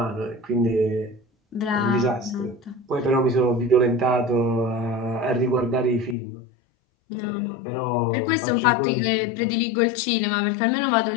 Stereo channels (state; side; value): drops out; right; at 6.2 s